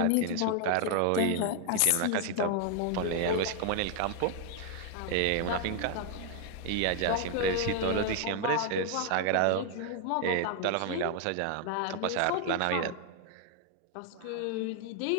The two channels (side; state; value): both; different; correlation 0.00